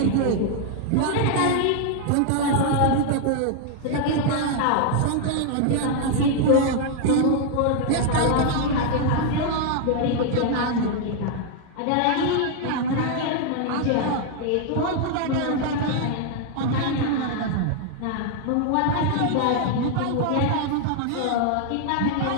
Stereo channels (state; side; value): different; both; correlation 0.00